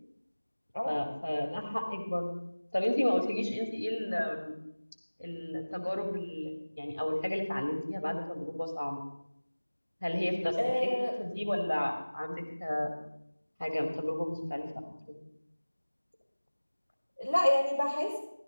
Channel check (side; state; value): both; inverted; correlation -1.00